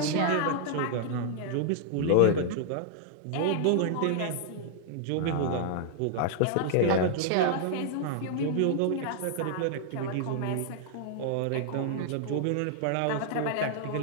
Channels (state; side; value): different; both; correlation 0.00